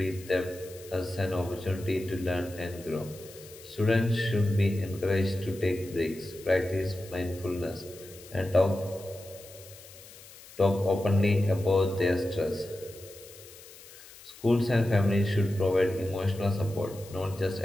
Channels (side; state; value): left; noise; hiss, 19 dB below the sound